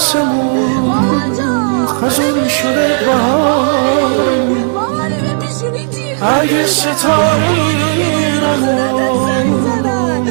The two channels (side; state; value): left; silent; 72 dB below the other